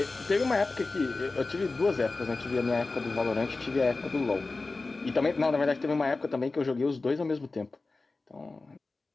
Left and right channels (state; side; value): quieter; right; 3.5 dB